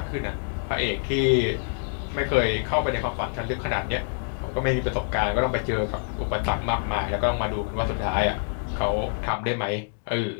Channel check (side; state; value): right; silent; digital silence